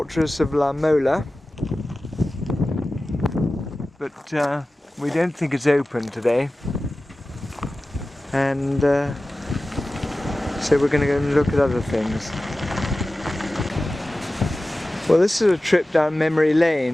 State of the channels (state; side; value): normal; both; correlation 0.96